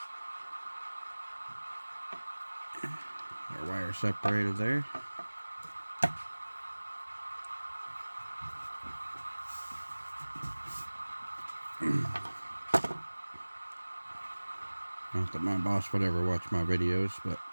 Our wire separated there. Not that my boss would ever watch my videos, but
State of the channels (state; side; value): inverted; both; correlation -1.00